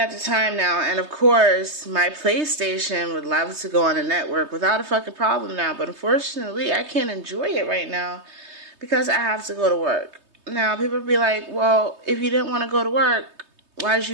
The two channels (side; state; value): left; late; 3.2 ms